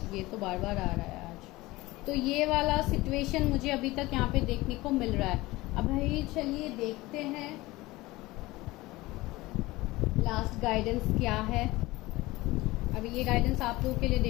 ये तो बार बार आ रहा है आज। तो ये वाला सिचुएशन मुझे अभी तक यहाँ पे देखने को मिल रहा है। अब भाई चलिए देखते हैं लास्ट गाइडेंस क्या है। अब ये गाइडेंस आप लोगों के लिए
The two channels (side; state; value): right; quieter; 19.9 dB